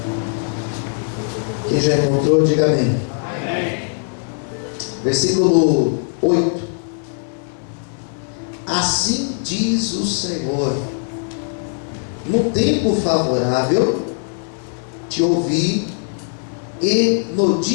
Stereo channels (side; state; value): right; silent; 56 dB below the other